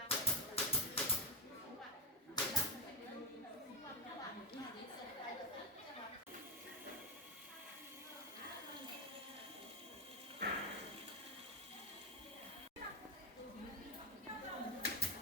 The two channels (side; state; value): both; normal; correlation 0.06